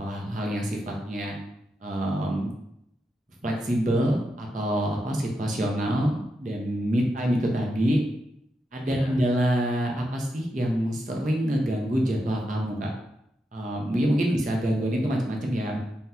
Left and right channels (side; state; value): both; normal; correlation 0.85